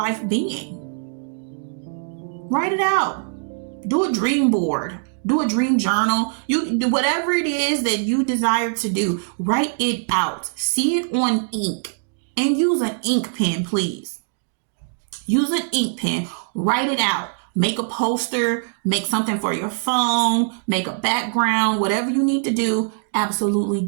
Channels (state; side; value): silent; left; digital silence